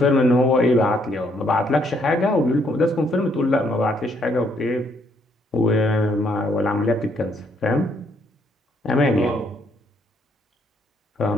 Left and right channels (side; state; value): both; normal; correlation 0.70